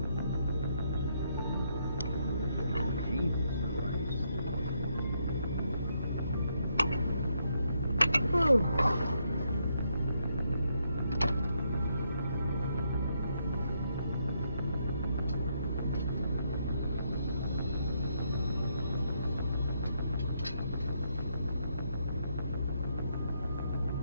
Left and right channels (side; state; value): both; inverted; correlation -0.76